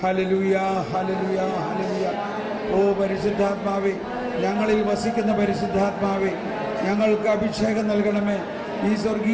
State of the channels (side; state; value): both; identical; correlation 1.00